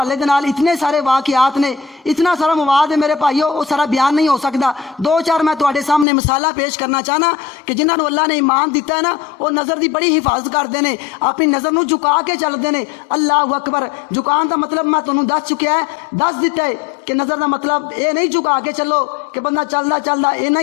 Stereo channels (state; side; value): drops out; right; at 6.1 s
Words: دے نال اتنے سارے واقعات نے، اتنا سارا مواد ہے میرے بھائیو، وہ سارا بیان نہیں ہو سکتا۔ دو چار میں تواڈے سامنے مثالہ پیش کرنا چاہنا کہ جنہاں نو اللہ نے ایمان دیتا ہے نا، وہ نظر دی بڑی حفاظت کرتے ہیں، اپنی نظر نو جھکا کے چلتے ہیں۔ اللہ اکبر۔ جھکان دا مطلب میں تانوں دس چکیا ہے، دس دیتا ہے کہ نظر دا مطلب یہ نہیں جھکا کے چلو کہ بندہ چلدا اینا